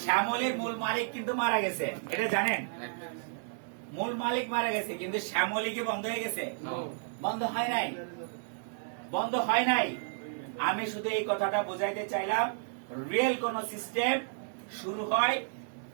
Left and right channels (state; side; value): silent; left; digital silence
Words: শ্যামলির মূল মালিক কিন্তু মারা গেছে, এটা জানেন? মূল মালিক মারা গেছে, কিন্তু শ্যামলি কি বন্ধ হয়ে গেছে? বন্ধ হয় নাই, বন্ধ হয় নাই। আমি শুধু এই কথাটা বোঝাইতে চাইলাম, রিয়েল কোন সিস্টেম শুরু হয়